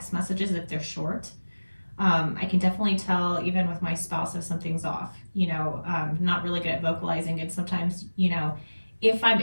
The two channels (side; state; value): both; inverted; correlation -1.00